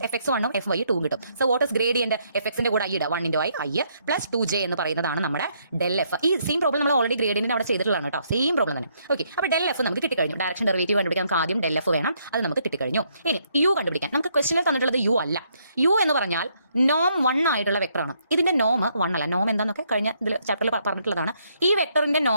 എഫ് എക്സ് 1ഉം എഫ് വൈ 2 കിട്ടും. So what is gradient? F എക്സിന്റെ കൂടെ ഐ ഇടുക, 1 ഇൻറ്റു ഐ പ്ലസ് 2j എന്ന് പറയുന്നതാണ് നമ്മുടെ ഡെൽ എഫ്. ഈ സെയിം പ്രോബ്ലം നമ്മൾ ഓൾറെഡി ഗ്രേഡിയന്റിന് അവിടെ ചെയ്തിട്ടുള്ളതാണ് കേട്ടോ, സെയിം പ്രോബ്ലം തന്നെ. ഓക്കെ, അപ്പോൾ ഡെൽ എഫ് നമുക്ക് കിട്ടിക്കഴിഞ്ഞു. ഡയറക്ഷൻ ഡെറിവേറ്റീവ് കണ്ടുപിടിക്കാൻ നമുക്ക് ആദ്യം ഡെൽ എഫ് വേണം, അത് നമുക്ക് കിട്ടിക്കഴിഞ്ഞു. ഇനി യു കണ്ടുപിടിക്കാൻ നമുക്ക് ക്വസ്റ്റനിൽ തന്നിട്ടുള്ളത് യു അല്ല. യു എന്ന് പറഞ്ഞാൽ നോം 1 ആയിട്ടുള്ള വെക്ടറാണ്. ഇതിന്റെ നോം 1 അല്ല. നോം എന്താണെന്നൊക്കെ കഴിഞ്ഞ ഇതിൽ ചാപ്റ്ററിൽ പറഞ്ഞിട്ടുള്ളതാണ്. ഈ വെക്ടറിന്റെ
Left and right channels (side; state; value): both; inverted; correlation -0.72